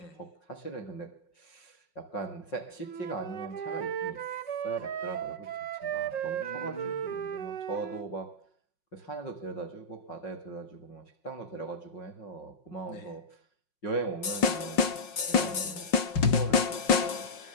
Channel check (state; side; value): late; right; 5.5 ms